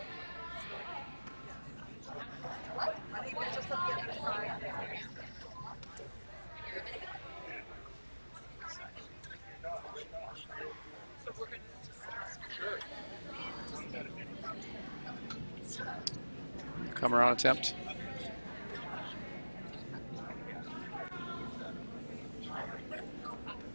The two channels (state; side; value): inverted; both; correlation -1.00